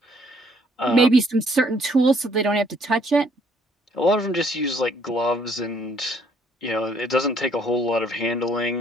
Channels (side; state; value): both; normal; correlation 0.65